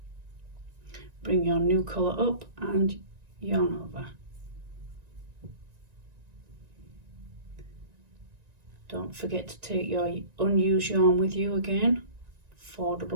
bring your new colour up and yarn over. Don't forget to take your unused yarn with you again. 4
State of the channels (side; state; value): left; late; 1.9 ms